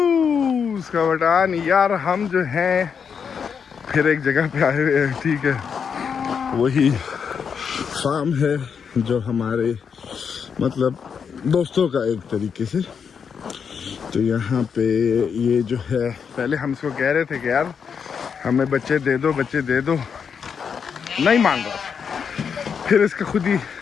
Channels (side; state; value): right; quieter; 6.7 dB